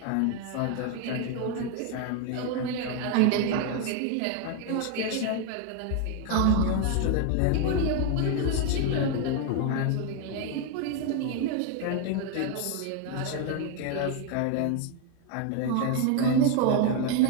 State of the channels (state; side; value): different; both; correlation 0.01